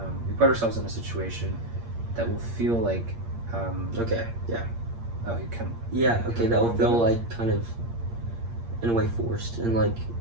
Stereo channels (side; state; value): left; late; 8.6 ms